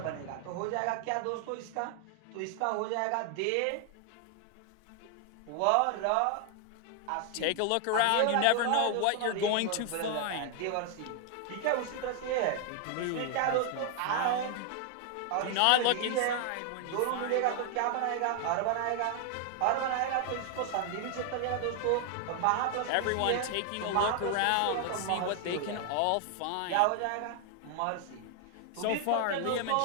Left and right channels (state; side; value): different; both; correlation 0.00